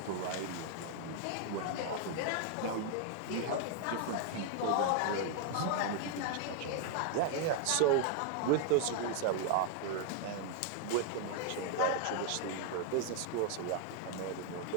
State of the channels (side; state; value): both; different; correlation 0.00